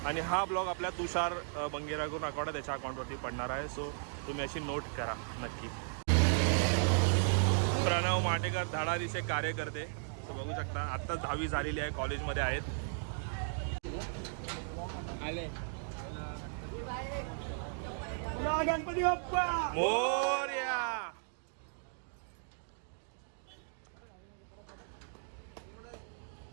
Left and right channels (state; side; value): silent; left; digital silence